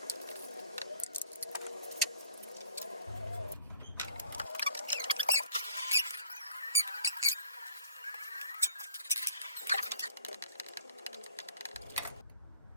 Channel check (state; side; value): inverted; both; correlation -0.54